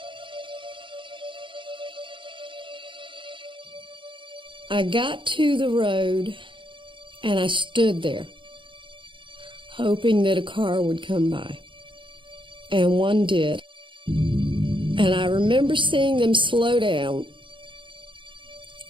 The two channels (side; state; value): left; late; 0.24 ms